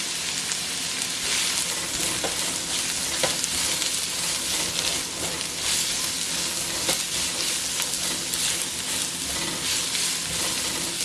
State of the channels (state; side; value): identical; both; correlation 1.00